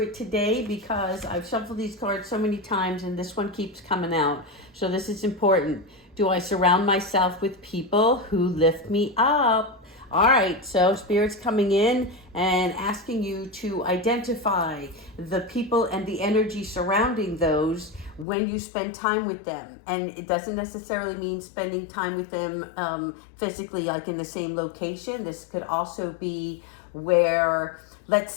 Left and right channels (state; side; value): drops out; right; at 18.2 s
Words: today because I've shuffled these cards so many times and this one keeps coming out. So this is important. Do I surround myself with people who lift me up? All right, so Spirit's coming in and asking you to identify the people and the energy surrounding those when you spend time with them. And it doesn't necessarily mean spending time with them physically, like in the same location. This could also be where, let's